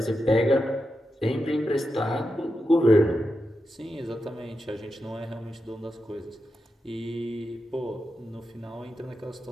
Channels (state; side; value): normal; both; correlation 0.88